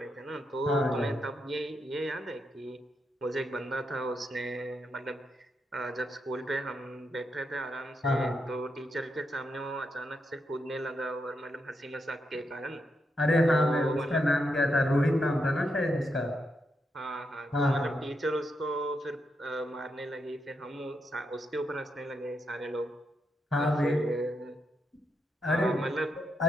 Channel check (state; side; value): normal; both; correlation 0.82